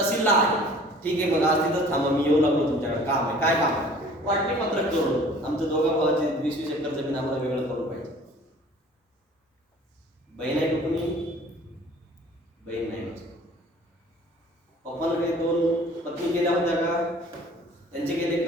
आहे. ठीक आहे मग आज तिथंच थांबा मी येऊ लागलो तुमच्याकडे. काम आहे. काय काम आहे? वाटणी पत्रक जोडून आमचं 2 भावाची 20-20 एकर जमीन आम्हाला वेगळं करून पाहिजे. बहीण आहे कुठून? बहीण नाही. पप्पानं काही 2 पत्नी केल्या होत्या का? त्यांचे केले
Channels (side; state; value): both; normal; correlation 0.50